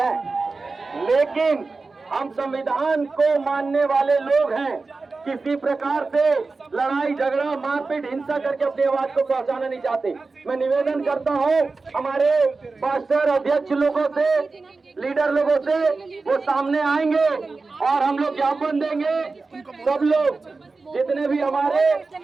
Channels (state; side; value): quieter; left; 3.9 dB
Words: लेकिन हम संविधान को मानने वाले लोग हैं। किसी प्रकार से लड़ाई झगड़ा मारपीट हिंसा करके अपनी आवाज को पहुंचाना नहीं चाहते। मैं निवेदन करता हूं हमारे पास्टर अध्यक्ष लोगों से, लीडर लोगों से, वो सामने आएंगे और हम लोग ज्ञापन देंगे। सब लोग जितने भी हमारे